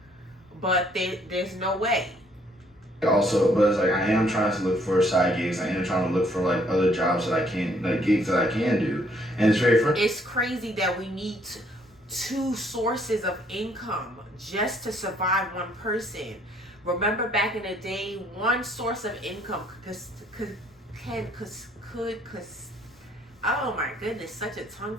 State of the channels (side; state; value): both; normal; correlation 0.65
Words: but there's no way. Also, but it's like, I am trying to look for side gigs. I am trying to look for like other jobs that I can, like gigs that I can do, and it's very frustrating. It's crazy that we need two sources of income just to survive one person. Remember back in the day, one source of income could oh my goodness, such a tongue